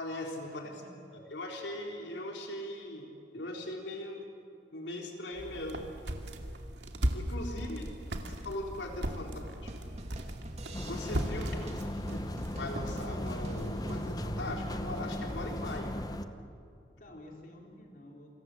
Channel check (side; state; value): both; normal; correlation 0.65